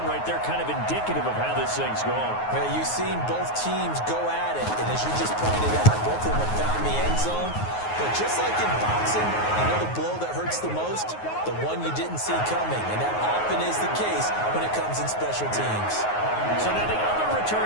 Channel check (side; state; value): right; late; 9.5 ms